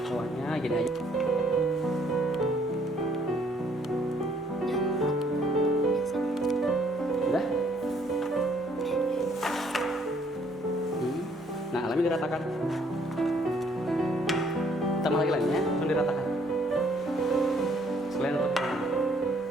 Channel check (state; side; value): normal; both; correlation 0.64